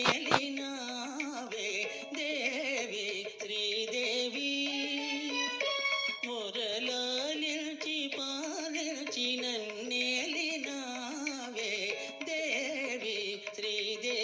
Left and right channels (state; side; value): identical; both; correlation 1.00